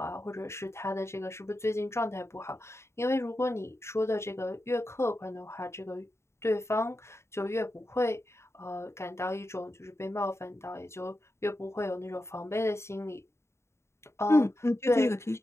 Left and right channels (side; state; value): right; late; 0.13 ms